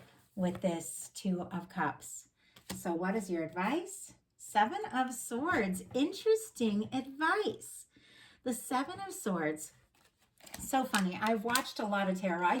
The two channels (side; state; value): both; identical; correlation 1.00